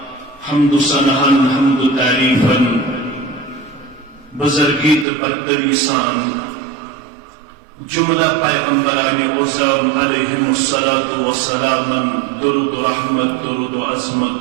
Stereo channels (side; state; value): left; drops out; at 5.1 s